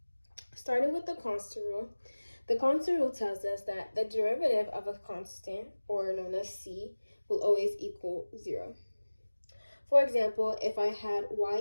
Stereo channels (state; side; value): inverted; both; correlation -1.00